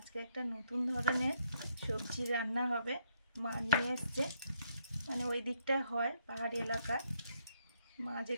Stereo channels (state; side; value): inverted; both; correlation -0.75